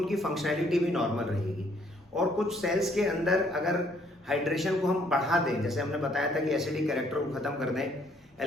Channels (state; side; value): normal; both; correlation 0.65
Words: फंक्शनैलिटी भी नॉर्मल रहेगी। और कुछ सेल्स के अंदर अगर हाइड्रेशन को हम बढ़ा दें, जैसे हमने बताया था कि एसिडिक कैरेक्टर को खत्म कर दें,